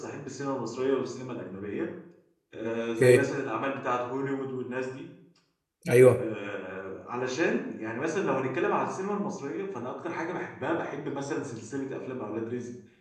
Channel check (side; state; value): both; identical; correlation 1.00